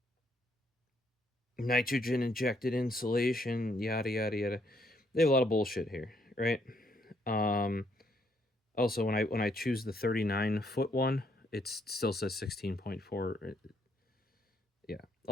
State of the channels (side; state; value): both; normal; correlation 0.71